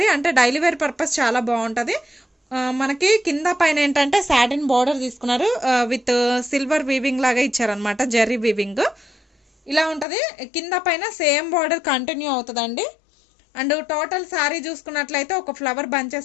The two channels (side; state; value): right; drops out; at 10.1 s